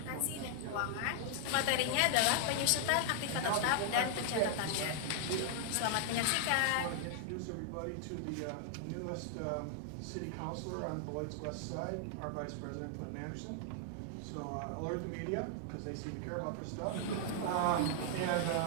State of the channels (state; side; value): different; both; correlation 0.00